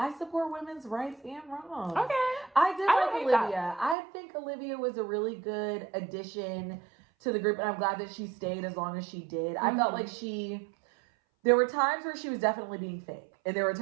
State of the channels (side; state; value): left; drops out; at 4.0 s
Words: support women's rights and wrongs. Okay. I did like Olivia. That. I think Olivia was a really good addition to the group, and I'm glad that she stayed as long as she did. I felt like there were times where she was definitely being fake, and there were